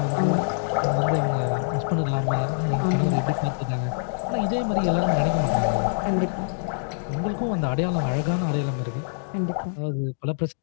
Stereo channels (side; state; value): right; silent; digital silence